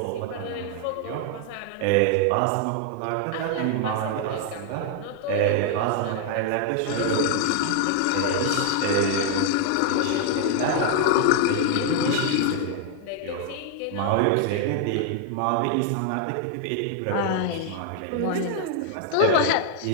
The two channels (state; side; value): different; both; correlation 0.00